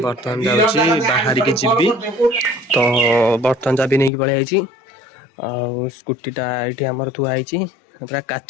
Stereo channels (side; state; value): right; drops out; at 4.1 s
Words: बर्तमान जाउची बाहरी के जिबी। तो बर्तमान जाबी नै कि पळे आइची आ स्कूटीटा एठी हमर थुआ आइची पूरा